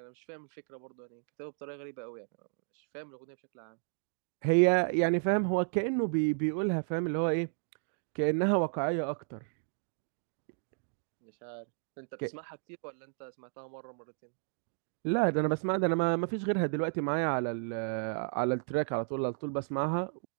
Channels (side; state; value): left; silent; digital silence